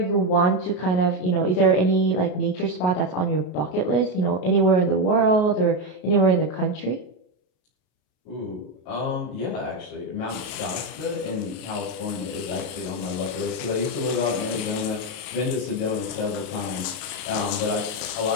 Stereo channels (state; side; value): late; right; 33 ms